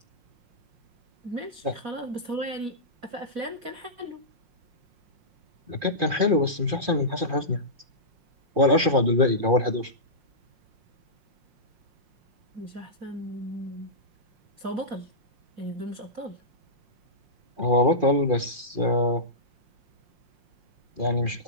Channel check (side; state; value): left; late; 5.6 ms